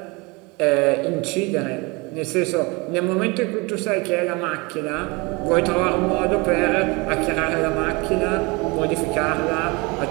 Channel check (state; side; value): quieter; left; 26.5 dB